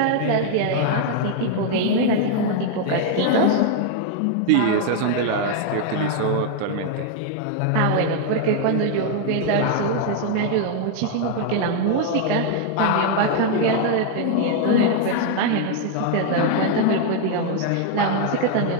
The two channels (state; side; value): different; both; correlation 0.00